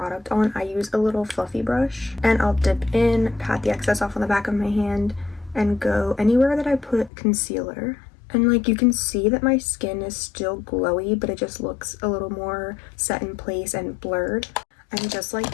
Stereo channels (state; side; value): drops out; right; at 7.1 s